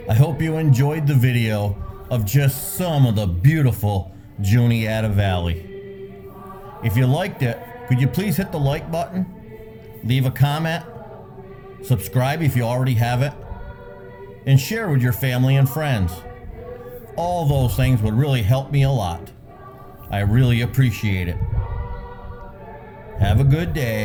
I hope you enjoyed the video of just some of the beautiful Juniata Valley. If you liked it, could you please hit the like button, leave a comment, subscribe if you already have it, and share with your family and friends. All those things would really help me a lot. I really appreciate it. Have a good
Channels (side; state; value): both; identical; correlation 1.00